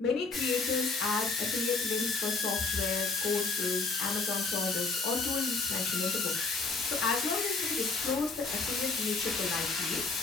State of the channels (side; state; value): right; quieter; 4.0 dB